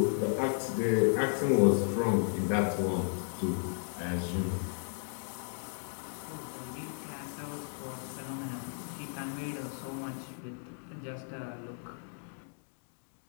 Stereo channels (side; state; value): right; silent; 55 dB below the other